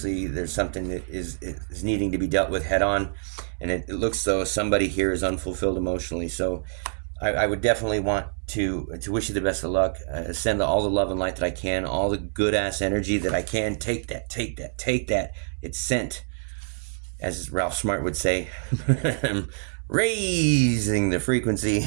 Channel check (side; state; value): left; silent; 61 dB below the other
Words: there's something that is needing to be dealt with head on, and it looks though somebody here is unfulfilled emotionally. So I would definitely want to wish you the best of luck. Send all the love and light that I can, all the good ass energy that I can. Take that. It's sent, as Ralph Smart would say. Raising the